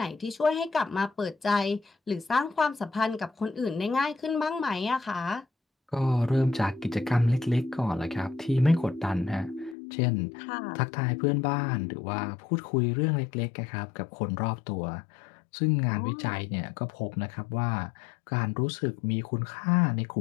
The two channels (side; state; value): right; drops out; at 9.8 s